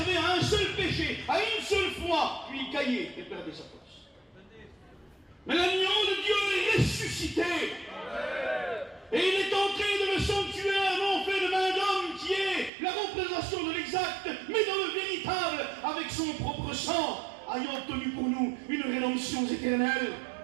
à un seul péché, à une seule fois, puis il caillait et perdait sa place. Mais l'agneau de Dieu est ressuscité. Et il est entré dans le sanctuaire, non fait de main d'homme, qui est la représentation de l'exact, mais dans le véritable, avec son propre sang, ayant obtenu pour nous une rédemption éternelle.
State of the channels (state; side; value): drops out; left; at 12.7 s